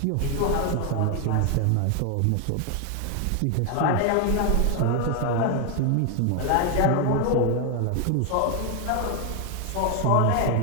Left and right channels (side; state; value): both; different; correlation 0.01